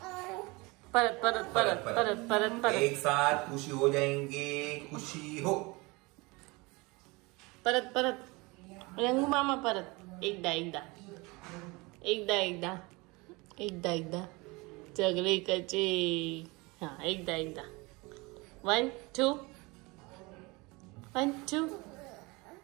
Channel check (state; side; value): quieter; left; 25.2 dB